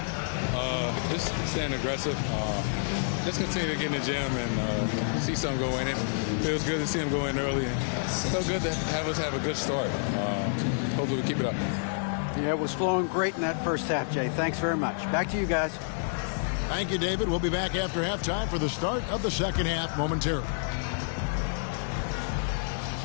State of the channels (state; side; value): silent; right; 59 dB below the other